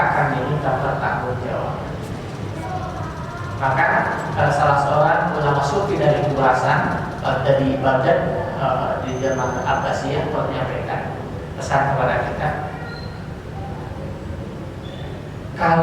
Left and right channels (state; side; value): identical; both; correlation 1.00